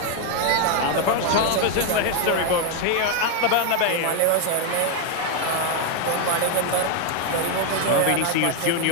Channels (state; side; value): different; both; correlation 0.01